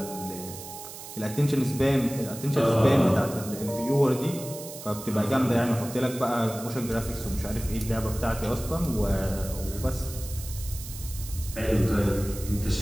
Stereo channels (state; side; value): noise; right; hiss, 12 dB below the sound